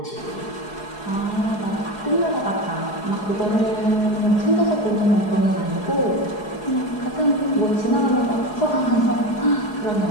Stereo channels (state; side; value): late; right; 4.8 ms